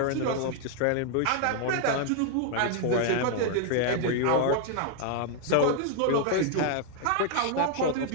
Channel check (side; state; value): both; different; correlation 0.00